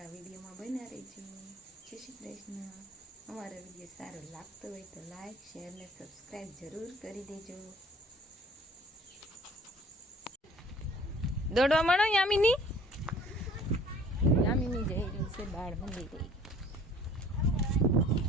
વિડીયોમાં બન્યા રહેજો. જય શ્રી કૃષ્ણ. અમારો વિડીયો સારો લાગતો હોય તો લાઈક, શેર ને સબસ્ક્રાઈબ જરૂર કરી દેજો. દોડવા માંડો યામિની. યામિની જઈ રહી છે બાળ મંદિરે.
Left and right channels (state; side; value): normal; both; correlation 0.52